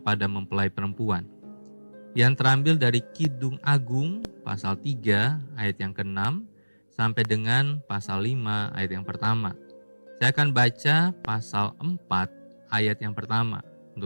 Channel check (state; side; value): inverted; both; correlation -1.00